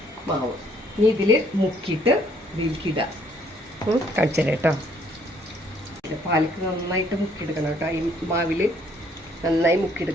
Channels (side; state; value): both; normal; correlation 0.65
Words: മാവ് ഇനി ഇതിൽ മുക്കിയിട്ട് ഇതിലേക്കിടാം. കാണിച്ചത് കേട്ടോ. പാലക്ക് നന്നായിട്ട് മുക്കിയെടുക്കണം കേട്ടോ. ഈ മാവിൽ നന്നായി